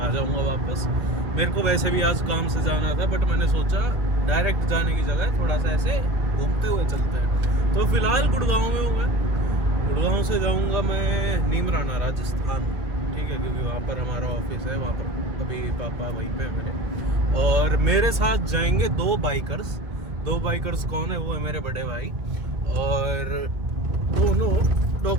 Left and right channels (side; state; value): left; late; 1.8 ms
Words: जाऊँगा वापस। मेरे को वैसे भी आज काम से जाना था, बट मैंने सोचा डायरेक्ट जाने की जगह थोड़ा सा ऐसे घूमते हुए चलते हैं। तो फिलहाल गुड़गांव में हूँ मैं। गुड़गांव से जाऊँगा मैं नीमराना, राजस्थान, ठीक है, क्योंकि वहाँ पर हमारा ऑफिस है। वहाँ पर अभी पापा वहीं पे है मेरे। और मेरे साथ जाएंगे दो बाइकर्स कौन है? वो है मेरे बड़े भाई। और दोनों